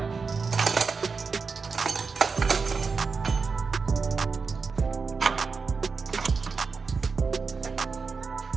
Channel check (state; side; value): quieter; left; 4.9 dB